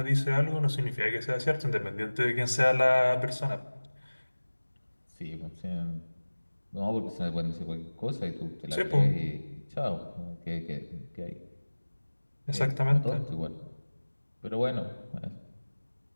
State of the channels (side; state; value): both; inverted; correlation -1.00